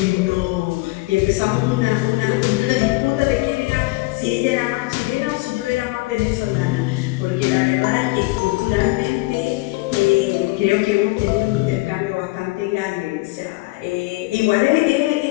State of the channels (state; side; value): quieter; right; 22.9 dB